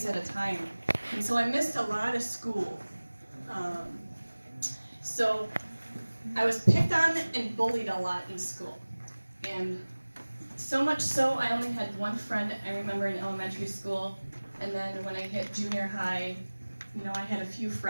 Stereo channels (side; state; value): both; inverted; correlation -1.00